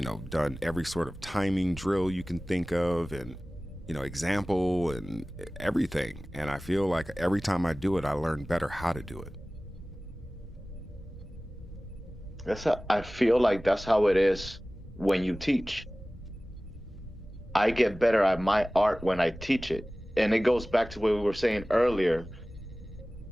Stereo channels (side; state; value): both; normal; correlation 0.98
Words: know, done every sort of timing drill you can think of, and you know, example and everything. And I feel like every time I do it I learn better how to do it. I feel like that's how it is when you teach. I get better at my art when I teach it. And it goes back to what we were saying earlier.